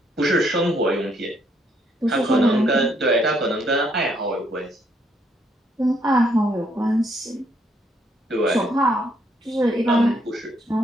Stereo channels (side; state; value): both; normal; correlation 0.71